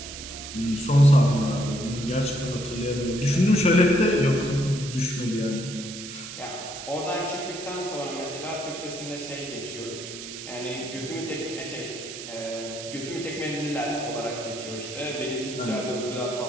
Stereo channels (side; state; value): right; noise; hiss, 10 dB below the sound